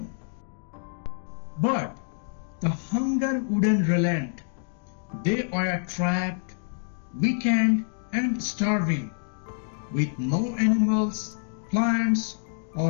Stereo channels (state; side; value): silent; right; 60 dB below the other